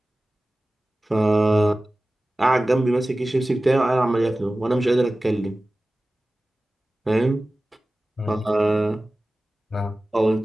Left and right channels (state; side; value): normal; both; correlation 0.97